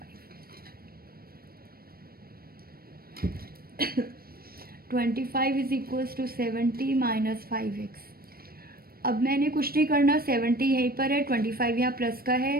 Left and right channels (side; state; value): left; late; 0.44 ms